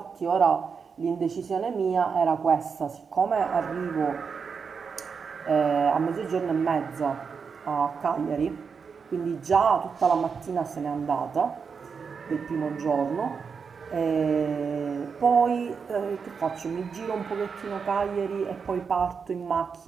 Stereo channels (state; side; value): quieter; left; 5.8 dB